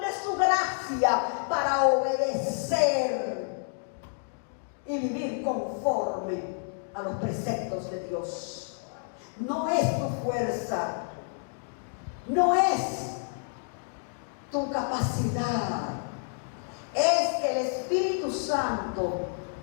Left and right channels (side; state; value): right; silent; digital silence